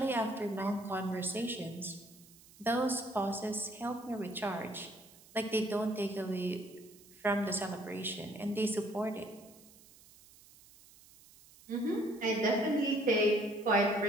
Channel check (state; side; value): noise; right; hiss, 24 dB below the sound